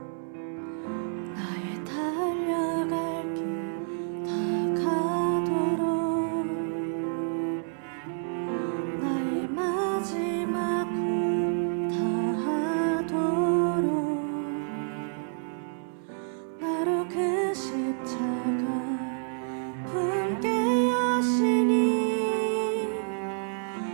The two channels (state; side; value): silent; left; 59 dB below the other